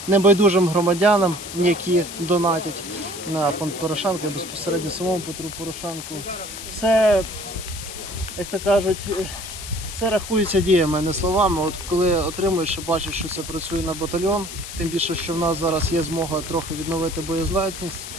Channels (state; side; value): noise; left; hiss, 10 dB below the sound